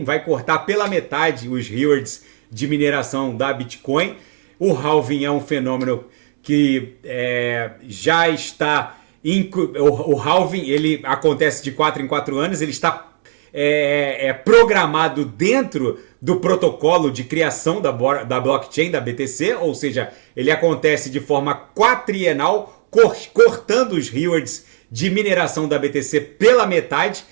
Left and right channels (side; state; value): left; silent; digital silence